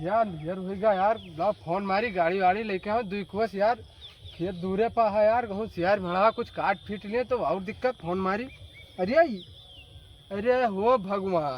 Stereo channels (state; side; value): identical; both; correlation 1.00